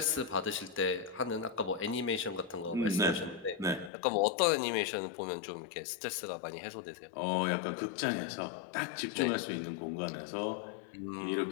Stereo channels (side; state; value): right; drops out; at 3.9 s